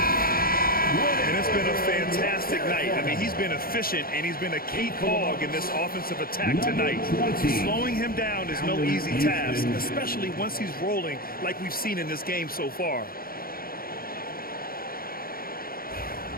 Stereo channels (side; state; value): right; late; 0.43 ms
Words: And it's been a fantastic night. I mean, he's been efficient, and he's been a key cog in this offensive attack tonight. Slowing him down is no easy task, especially once he's rolling like we've seen in this game so far.